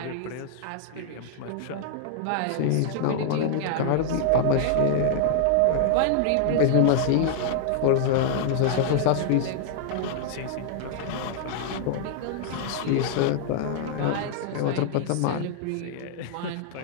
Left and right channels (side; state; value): both; different; correlation -0.01